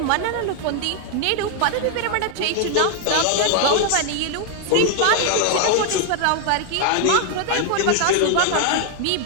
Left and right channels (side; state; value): both; different; correlation 0.00